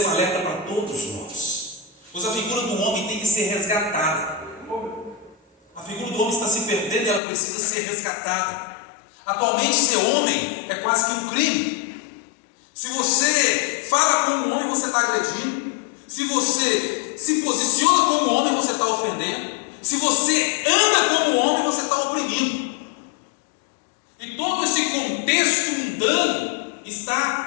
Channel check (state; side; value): drops out; right; at 7.2 s